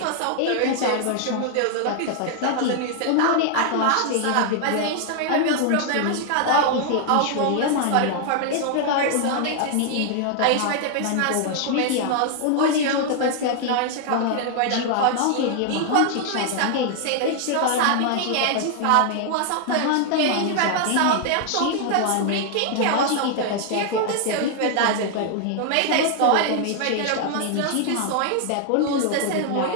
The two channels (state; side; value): different; both; correlation 0.00